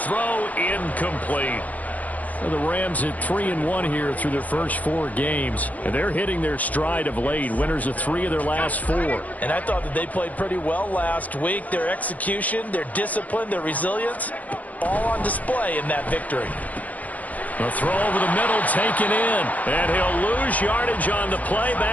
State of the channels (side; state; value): right; late; 0.076 ms